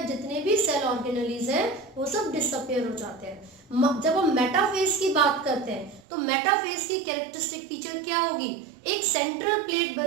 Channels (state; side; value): drops out; left; at 6.0 s